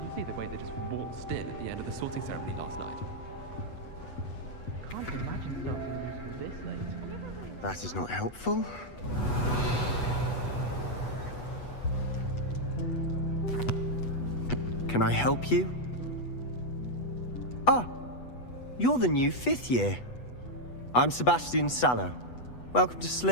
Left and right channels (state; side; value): late; right; 8.1 ms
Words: you see the way they just waltzed in at the end of the sorting ceremony last night? I can't imagine starting a musical this late. That is not helpful. Can I help you? Ah, you're the new 5th year. I'm Sebastian Sallow. Welcome to